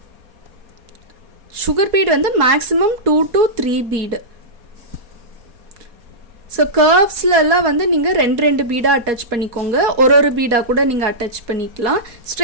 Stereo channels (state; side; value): late; left; 4.2 ms